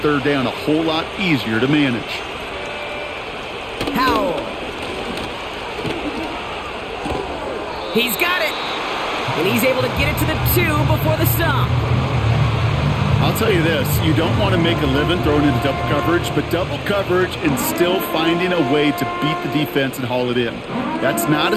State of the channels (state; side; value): identical; both; correlation 1.00